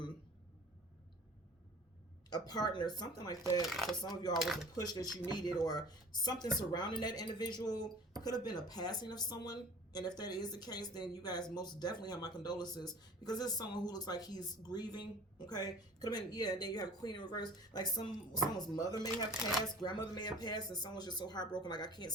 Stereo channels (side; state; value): both; normal; correlation 0.45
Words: a partner, something like that. For some of you all was a push that you needed, or something surrounding that individual. Could have been a passing of someone. And if that is the case, then you guys most definitely have my condolences, because this is someone who looks like he's grieving. Okay, could have been, yeah. And then you have Queen in reverse, like someone's mother may have passed, grandmother may have passed, and someone's just so heartbroken, like, I can't